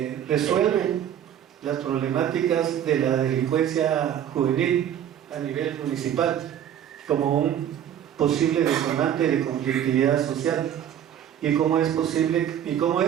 resuelven las problemáticas de la delincuencia juvenil a nivel municipal como un posible detonante de conflictividad social? ¿Y cómo es posible, y cómo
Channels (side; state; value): left; quieter; 10.1 dB